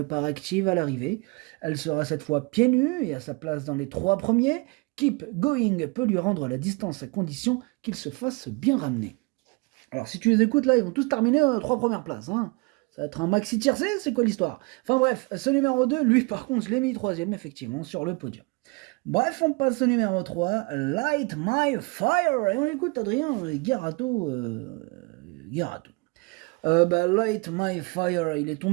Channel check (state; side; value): quieter; left; 28.6 dB